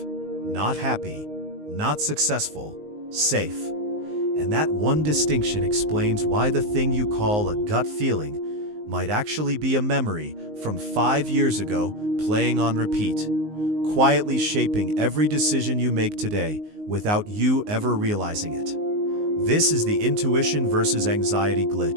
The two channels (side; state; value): left; late; 19 ms